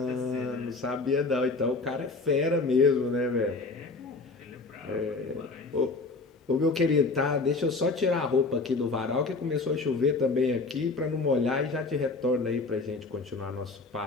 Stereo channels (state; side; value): quieter; right; 3.8 dB